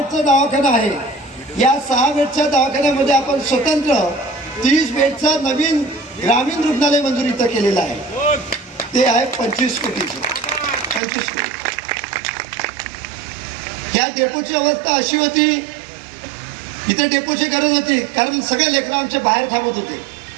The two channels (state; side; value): drops out; left; at 11.0 s